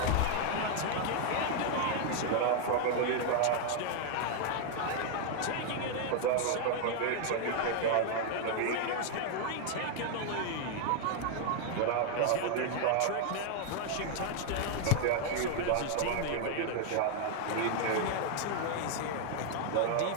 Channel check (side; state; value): both; different; correlation 0.00